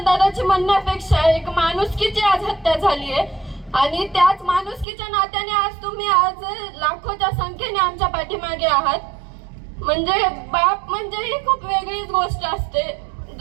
दादाची म्हणण्यापेक्षा एक माणुसकीची आज हत्या झाली आहे, आणि त्याच माणुसकीच्या नात्याने आज तुम्ही आज लाखोच्या संख्येने आमच्या पाठीमागे आहात. म्हणजे बाप म्हणजे ही खूप वेगळीच गोष्ट असते.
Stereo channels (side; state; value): left; drops out; at 4.9 s